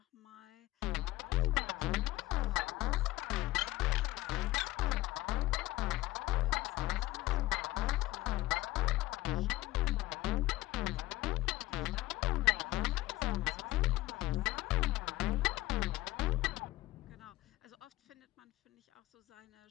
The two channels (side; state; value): right; quieter; 17.5 dB